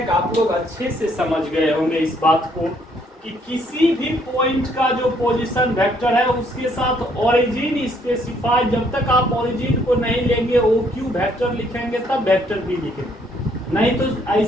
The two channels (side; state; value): both; normal; correlation 0.67